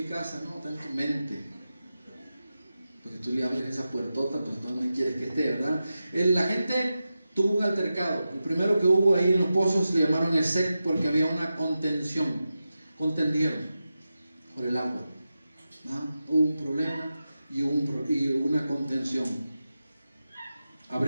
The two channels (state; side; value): inverted; both; correlation -0.92